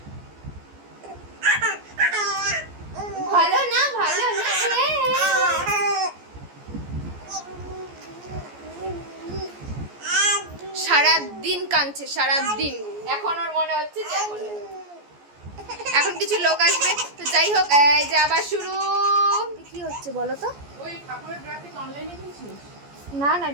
ভালো না ভালো না? সারাদিন কাঁদছে সারাদিন। এখন ওর মনে হচ্ছে যে এখন কিছু লোক আসবে তো যাই হোক। এই যে আবার শুরু। কি হচ্ছে বলো তো? ওই ঠাকুরের গ্রাফিক অনলাইনে কিনছিস? না না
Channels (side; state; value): left; late; 14 ms